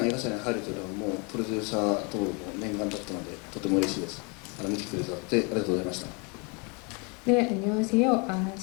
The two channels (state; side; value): quieter; right; 32.5 dB